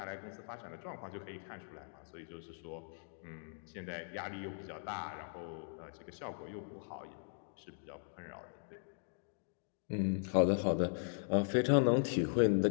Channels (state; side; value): silent; right; digital silence